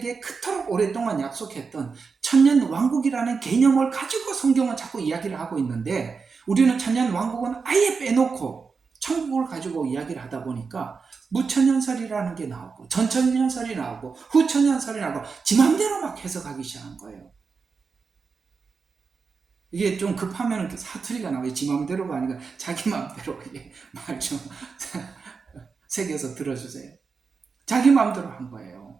그토록 오랫동안 약속했던 천년 왕국이라는 개념을 가지고 성경은 자꾸 이야기를 하고 있는데 우리는 천년 왕국은 아예 빼놓고 천국을 가지고 이야기를 하다 보니까 무천년설이라는 게 나오고 전천년설이 나오고 후천년설이 나오고 지 맘대로 막 해석하기 시작한 거예요. 이게 좀 급하면 사투리가 나와요. 지 맘대로가 아니라 자기 맘대로 말 좀 새겨서 들어주세요. 자기 맘대로 한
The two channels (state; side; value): quieter; left; 5.1 dB